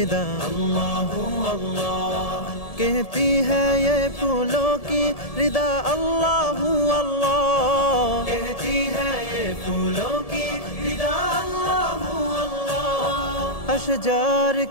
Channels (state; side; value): late; right; 1.7 ms